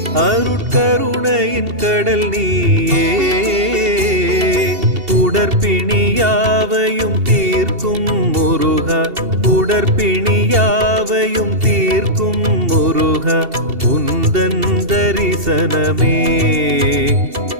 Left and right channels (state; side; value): late; left; 2.7 ms